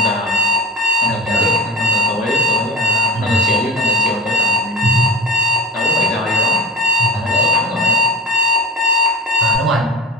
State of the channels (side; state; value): both; normal; correlation 0.32